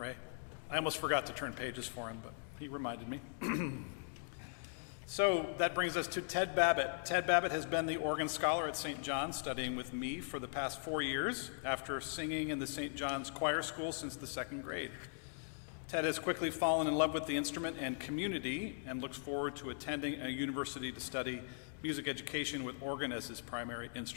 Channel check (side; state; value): right; silent; digital silence